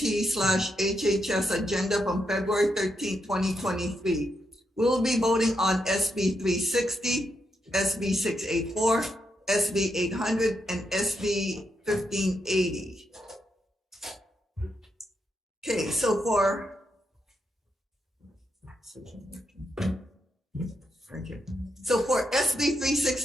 agenda from February 13, 2023. We will be voting on SB 360, SB 684, SB 800, and SB 1580. Okay, so for SB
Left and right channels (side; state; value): both; normal; correlation 0.82